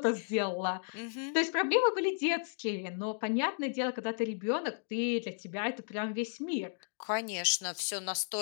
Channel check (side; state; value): right; silent; digital silence